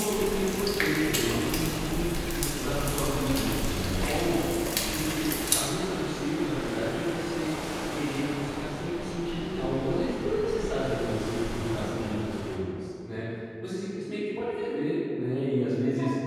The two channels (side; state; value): both; identical; correlation 1.00